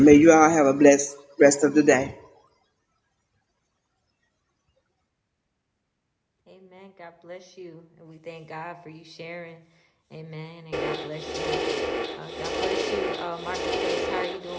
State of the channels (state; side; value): identical; both; correlation 1.00